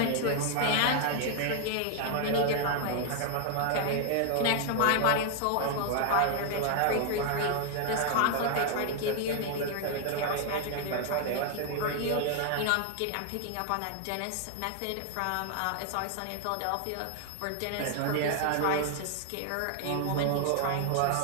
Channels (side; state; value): both; different; correlation 0.00